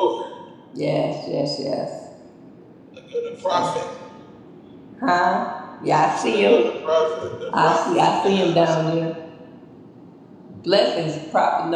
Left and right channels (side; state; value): both; identical; correlation 1.00